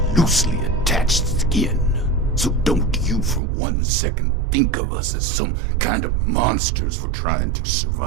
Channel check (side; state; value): left; drops out; at 3.4 s